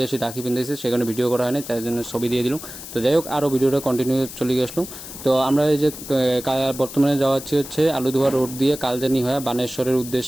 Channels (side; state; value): left; noise; hiss, 12 dB below the sound